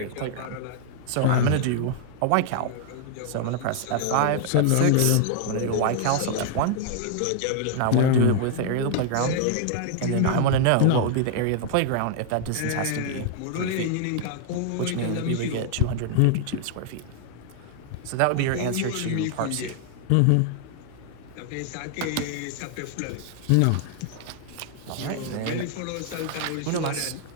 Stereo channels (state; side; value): different; both; correlation 0.00